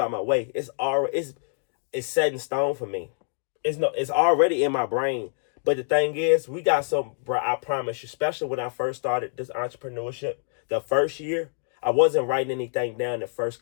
my way. It's already, it's set in stone for me. It's already in my brain. But the thing is, we got some, bro, I promise you, especially when I first started this entrepreneurship, the first year, I wasn't writing anything down the first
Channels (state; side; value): silent; right; digital silence